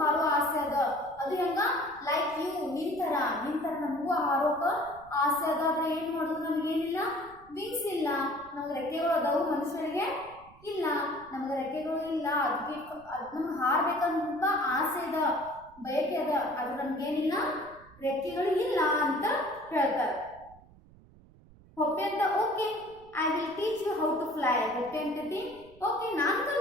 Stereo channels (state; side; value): noise; right; rumble, 24 dB below the sound